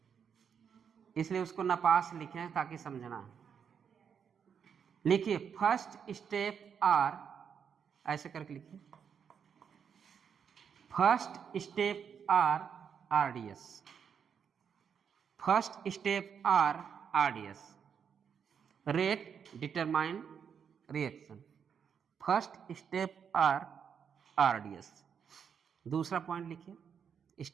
इसलिए उसको नापास लिखे हैं ताकि समझना। लिखिए फर्स्ट स्टेप आर, ऐसे करके लिखिए, first step are RDS, first step are RDS, rate determine reaction, first step are RDS. दूसरा पॉइंट लिखिए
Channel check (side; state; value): left; quieter; 7.3 dB